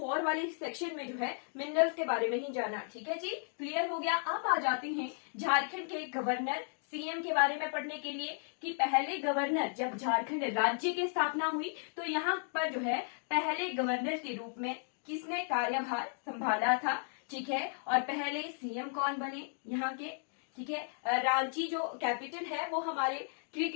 वाले सेक्शन में जो है मिनरल्स के बारे में ही जाना। ठीक है जी, क्लियर हो गया। अब आ जाते हैं झारखंड के गवर्नर सीएम के बारे में पढ़ने के लिए कि पहले गवर्नर, जब झारखंड राज्य की स्थापना हुई तो यहाँ पर जो है पहले गवर्नर के रूप में किसने कार्यभार संभाला था। ठीक है, और पहले सीएम कौन बने यहाँ के। ठीक है, रांची जो कैपिटल है वो हमारे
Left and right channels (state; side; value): silent; right; 55 dB below the other